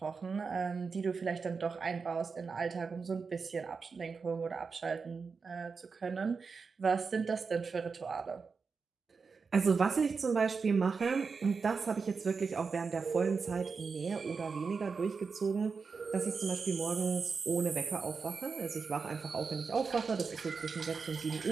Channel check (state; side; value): quieter; left; 5.1 dB